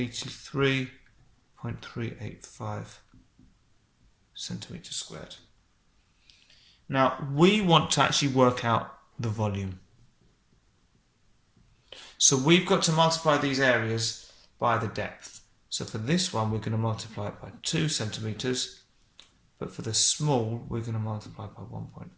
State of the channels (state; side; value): identical; both; correlation 1.00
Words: centimetres squared. Now, we want to actually work out the volume. So we've got to multiply these areas by the depth. So for this one, we're going to multiply it by 2 centimetres, but for the small, we're going to multiply it by